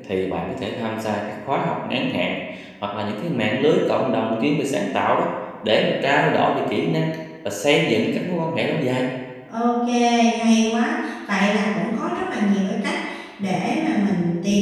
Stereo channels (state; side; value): identical; both; correlation 1.00